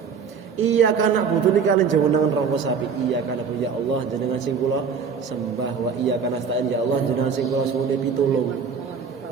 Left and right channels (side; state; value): left; quieter; 6.2 dB